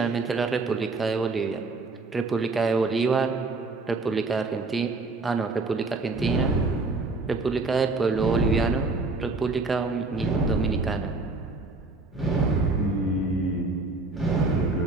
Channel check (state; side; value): quieter; left; 3.5 dB